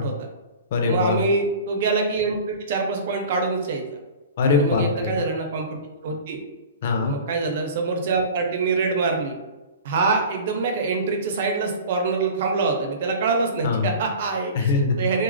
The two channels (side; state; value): both; inverted; correlation -0.39